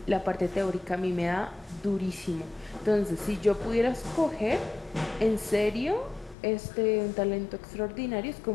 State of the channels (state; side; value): drops out; right; at 6.4 s